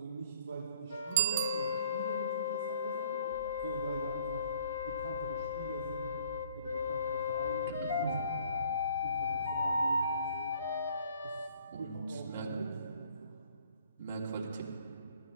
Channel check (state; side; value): inverted; both; correlation -0.58